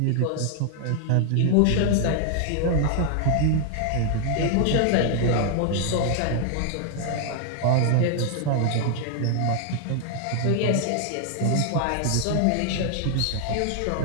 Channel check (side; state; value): both; different; correlation 0.00